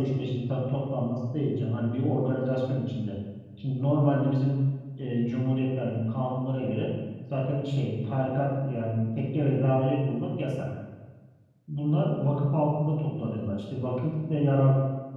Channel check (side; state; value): both; identical; correlation 1.00